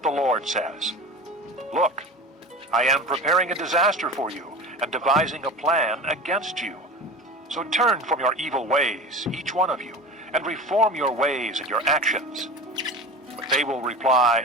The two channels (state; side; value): normal; both; correlation 0.32